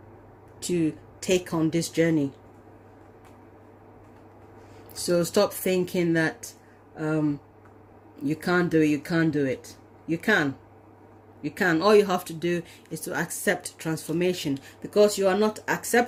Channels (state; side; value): identical; both; correlation 1.00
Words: to take on this journey. So stop thinking that you can't do it, you can't do it. You can. You can. All you have to do is to accept transformation, because you are not